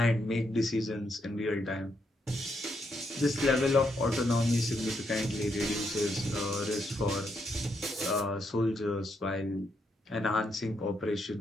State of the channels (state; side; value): normal; both; correlation 0.78